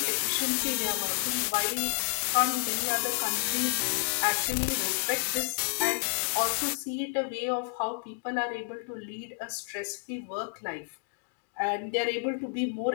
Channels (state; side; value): silent; right; 58 dB below the other